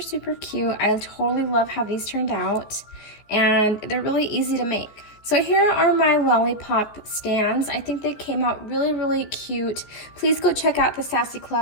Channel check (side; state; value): right; late; 14 ms